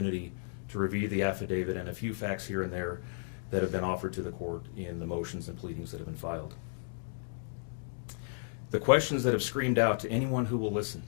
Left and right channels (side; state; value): right; silent; digital silence